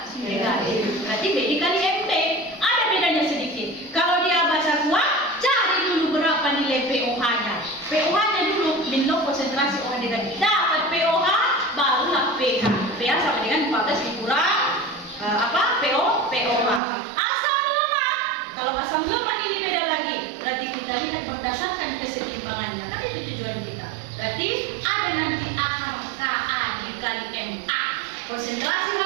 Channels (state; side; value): drops out; left; at 16.8 s